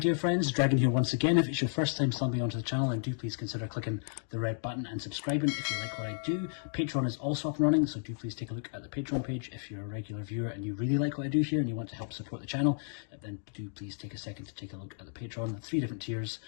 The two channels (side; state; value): right; silent; digital silence